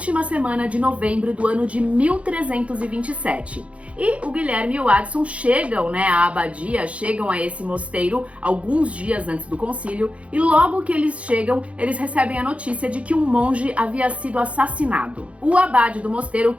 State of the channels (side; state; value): left; late; 0.063 ms